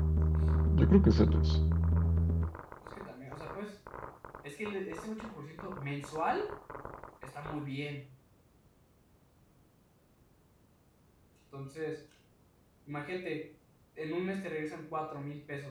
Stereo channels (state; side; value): identical; both; correlation 1.00